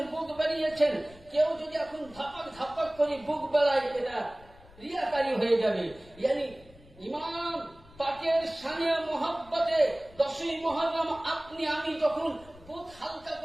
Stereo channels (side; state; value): left; noise; rumble, 23 dB below the sound